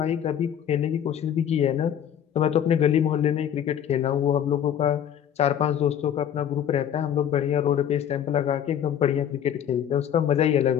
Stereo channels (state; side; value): quieter; right; 9.5 dB